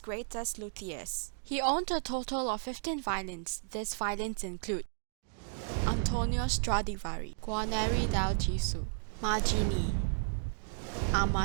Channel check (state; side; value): silent; left; digital silence